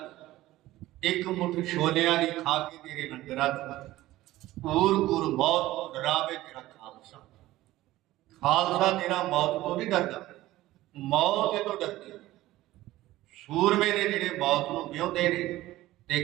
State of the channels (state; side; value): quieter; left; 16.4 dB